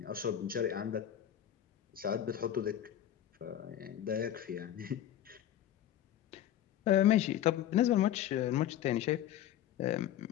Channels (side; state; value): right; quieter; 11.2 dB